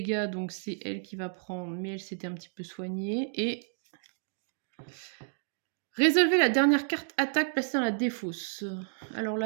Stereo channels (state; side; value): silent; left; digital silence